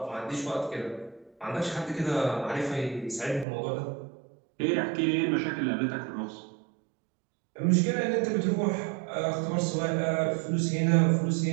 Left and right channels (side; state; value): left; drops out; at 3.5 s